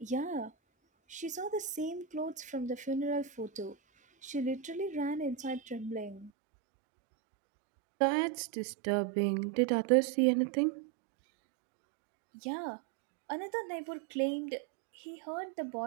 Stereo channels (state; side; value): drops out; left; at 6.3 s